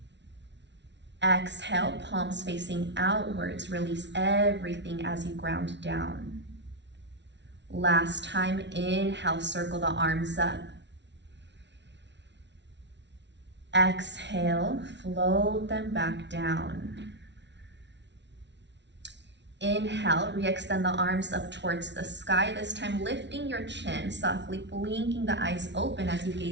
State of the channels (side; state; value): left; late; 0.51 ms